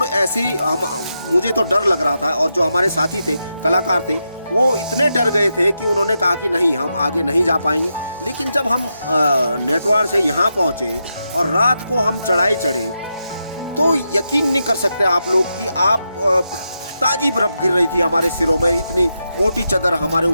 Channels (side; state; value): both; inverted; correlation -0.86